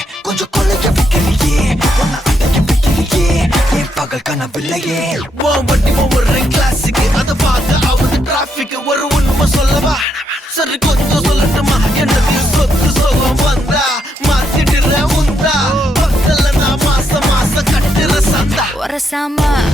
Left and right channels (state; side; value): normal; both; correlation 0.78